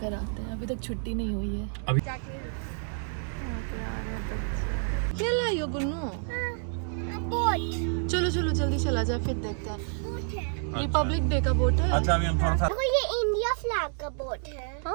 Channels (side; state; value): left; silent; 59 dB below the other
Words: आते हैं, अभी तक छुट्टी नहीं हुई है। अभी क्या लाई हो गुन्नू? चलो चलो जल्दी चला जाए, फिर देखते हैं। रिपब्लिक डे का बोट है। अच्छा अभी हम थोड़ा सा, ये इंडिया फ्लैग का बोट है।